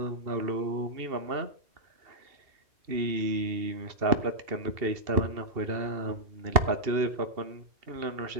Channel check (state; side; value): late; left; 2.7 ms